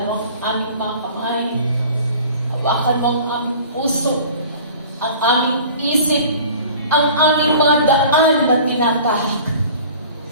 mo ang aming mga kamay, hawakan mo ang aming puso, ang aming isip, ang aming mga daan na tinatahak.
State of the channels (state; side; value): inverted; both; correlation -0.45